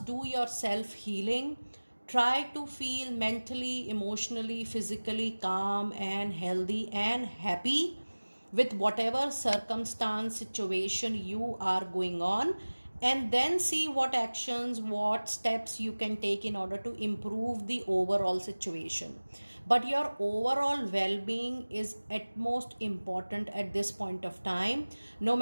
do your self healing. Try to feel mentally, emotionally, physically calm and healthy and happy with whatever circumstance, situation you are going on, and then see what actions, what steps you can take in order to improve the overall situation. But your overall well-being is at most important at this point of time. No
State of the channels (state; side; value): inverted; both; correlation -1.00